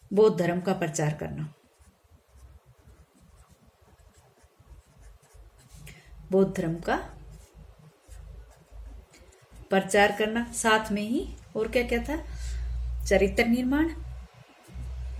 बौद्ध धर्म का प्रचार करना, बौद्ध धर्म का प्रचार करना। साथ में ही और क्या क्या था? चरित्र निर्माण,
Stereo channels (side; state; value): both; identical; correlation 1.00